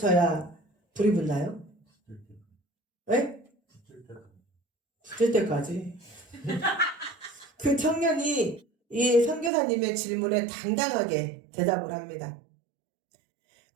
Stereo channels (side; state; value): left; drops out; at 9.5 s